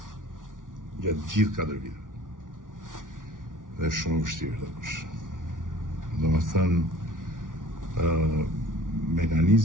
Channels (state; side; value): late; left; 0.88 ms